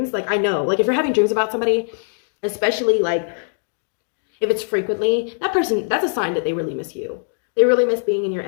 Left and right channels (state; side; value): silent; right; digital silence